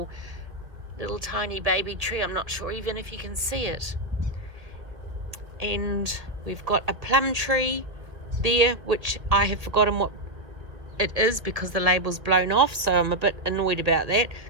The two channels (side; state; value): left; late; 1.4 ms